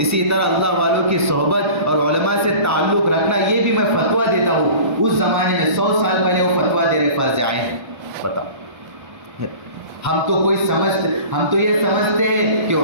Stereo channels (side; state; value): left; late; 1.3 ms